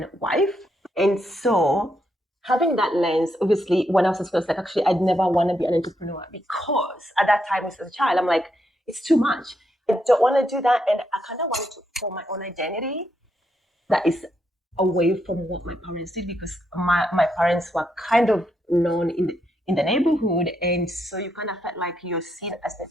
wife. And so having that lens, obviously, when I was in school, I was like, actually, I'd never want to be an entrepreneur because at that time, as a child, I'm like, it's too much. I don't want to do that. And I kind of wanted to form my own identity that is away from what my parents did, because my parents were kind of known in the neighborhood. And so you kind of felt like you're seen as the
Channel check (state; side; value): normal; both; correlation 0.79